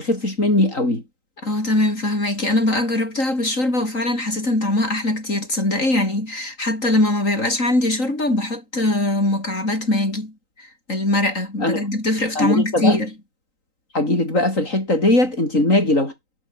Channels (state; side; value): late; right; 3.9 ms